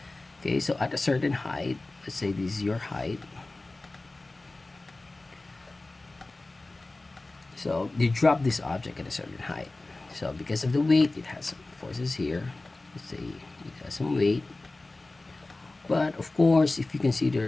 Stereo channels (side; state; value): right; quieter; 3.1 dB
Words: Okay, so at a certain height, let's say this is your height. So you drop this object at a certain height. So because of the weight, it has some forces here. Let's say it has some weight. But of course, if you